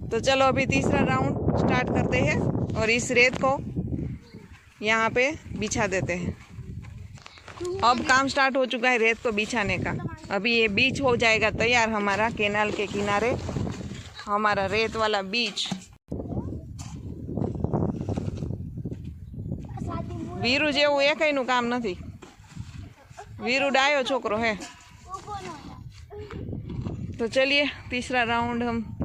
तो चलो अभी तीसरा राउंड स्टार्ट करते हैं और इस रेत को यहाँ पे बिछा देते हैं। अब काम स्टार्ट हो चुका है रेत को बिछाने का। अभी ये बीच हो जाएगा तैयार हमारा, कैनाल के किनारे हमारा रेत वाला बीच। वीरू जेवुं एकयનું काम नहीं, वीरू डायो छोकरो है। तो चलिए तीसरा राउंड हम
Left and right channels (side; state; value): both; identical; correlation 1.00